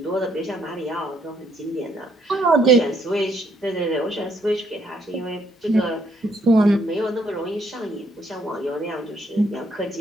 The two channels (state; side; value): normal; both; correlation 0.70